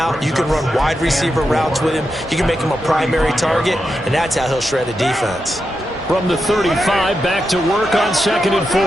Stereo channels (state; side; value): normal; both; correlation 0.87